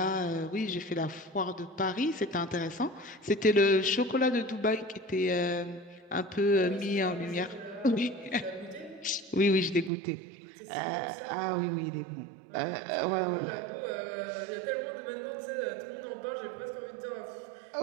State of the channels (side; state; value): left; drops out; at 9.9 s